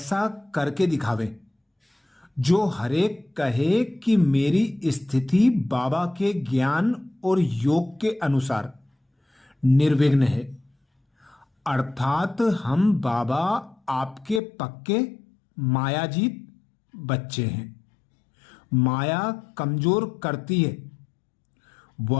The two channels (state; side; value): drops out; right; at 14.4 s